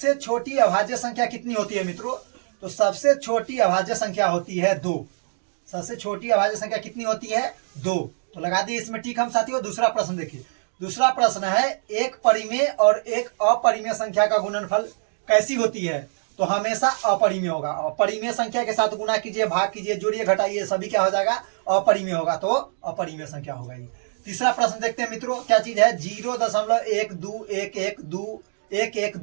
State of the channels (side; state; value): left; silent; digital silence